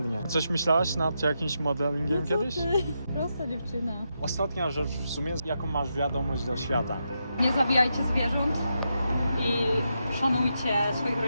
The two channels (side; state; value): both; inverted; correlation -0.84